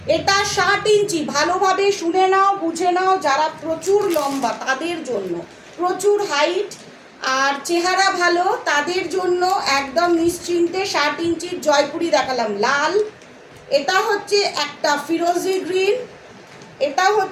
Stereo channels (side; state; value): both; identical; correlation 1.00